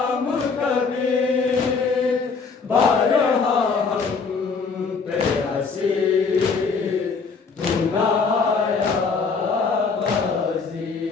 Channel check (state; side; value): quieter; right; 5.0 dB